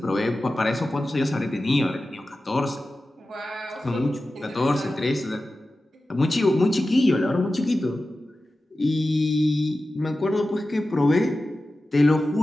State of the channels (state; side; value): normal; both; correlation 0.94